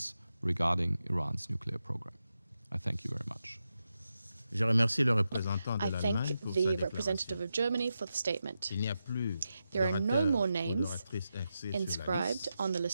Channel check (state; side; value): inverted; both; correlation -0.88